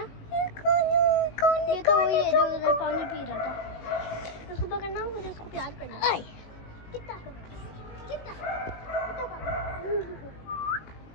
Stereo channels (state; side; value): late; right; 19 ms